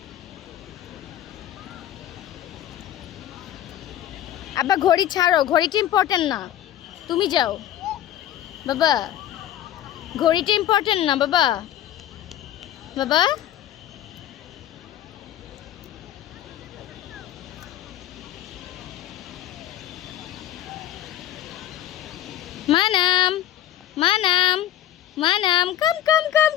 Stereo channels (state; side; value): quieter; right; 12.2 dB